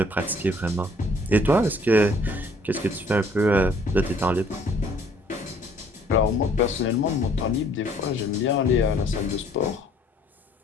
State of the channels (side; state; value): both; normal; correlation 0.60